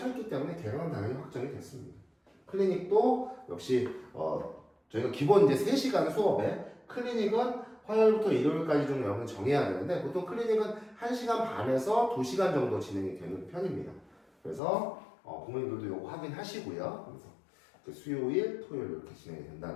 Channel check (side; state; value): right; drops out; at 14.6 s